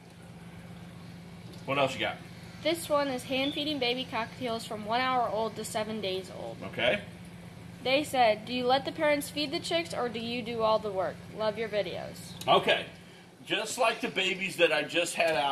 What else you got? This one is hand-feeding baby cockatiels from 1 hour old to 7 days old. Okay. They said, do you let the parents feed the chicks or do you do all the work? Love your videos. Okay. Just like the babies that I just had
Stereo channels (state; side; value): identical; both; correlation 1.00